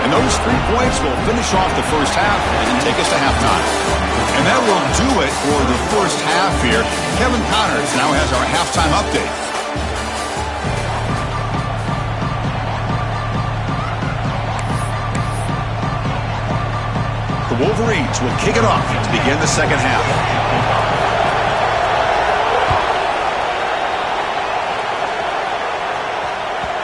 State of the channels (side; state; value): both; identical; correlation 1.00